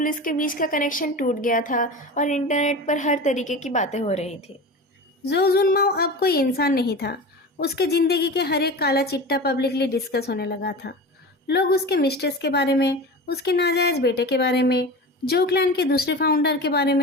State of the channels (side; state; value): both; normal; correlation 0.31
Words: के बीच का कनेक्शन टूट गया था और इंटरनेट पर हर तरीके की बातें हो रही थी। जो जुनमाओ अब कोई इंसान नहीं था। उसके जिंदगी के हर एक काला चिट्टा पब्लिकली डिस्कस होने लगा था। लोग उसके मिस्ट्रेस के बारे में, उसके नाजायज बेटे के बारे में, जोकलैंड के दूसरे फाउंडर के बारे